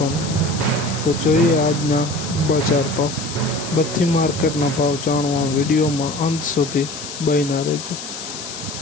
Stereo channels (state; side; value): noise; left; hiss, 9 dB below the sound